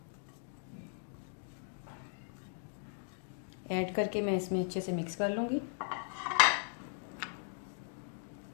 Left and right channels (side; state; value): right; silent; digital silence